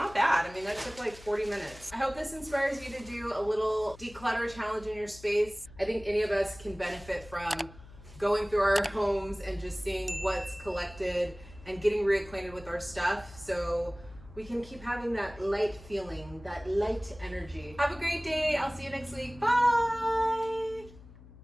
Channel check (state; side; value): noise; left; hum, 19 dB below the sound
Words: bad. I mean, that took like 40 minutes. I hope this inspires you to do a little declutter challenge in your space. I think any of us can benefit from going through our homes and just seeing what's collected and getting reacquainted with our stuff so we can keep having that light feeling, that light energy. Have a great day. I'll see you next week. Bye.